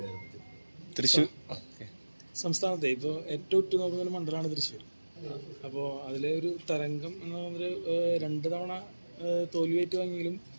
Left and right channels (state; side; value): inverted; both; correlation -1.00